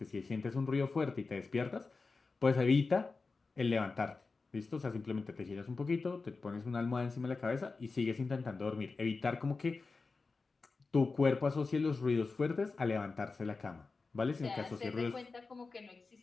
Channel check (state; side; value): quieter; right; 4.1 dB